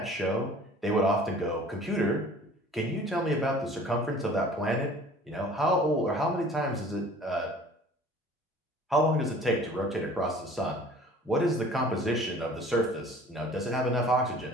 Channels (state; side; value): normal; both; correlation 0.48